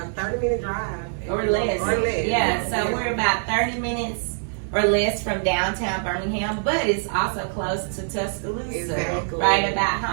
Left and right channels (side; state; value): left; silent; digital silence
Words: 30-minute drive. Or less. Or less. Yeah, so we're about 30 minutes or less from downtown Birmingham, but it's also close to Tuscaloosa. Exactly. Right about